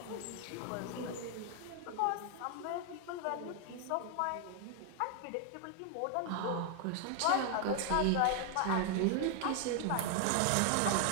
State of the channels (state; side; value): different; both; correlation 0.00